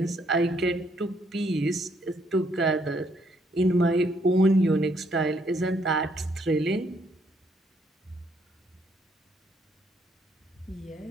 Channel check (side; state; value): both; normal; correlation 0.70